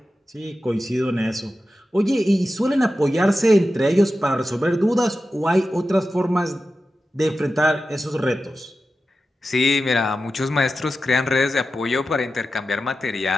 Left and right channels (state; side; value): normal; both; correlation 0.92